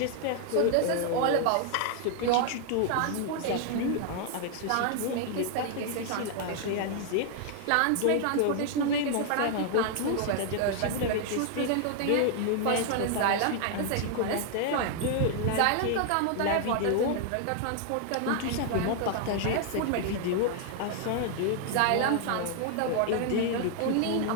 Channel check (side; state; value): both; different; correlation 0.00